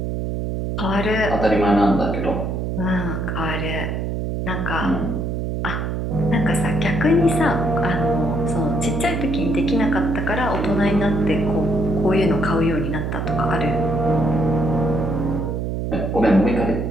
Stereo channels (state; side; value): noise; right; hum, 2 dB below the sound